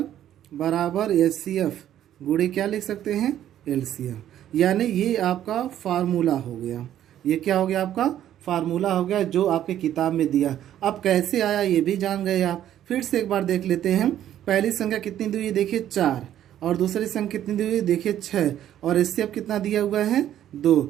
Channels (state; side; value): quieter; left; 11.4 dB